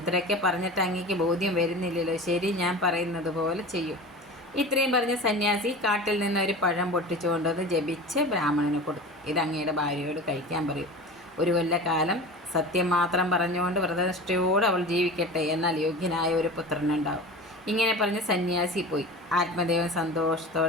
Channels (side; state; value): both; normal; correlation 0.34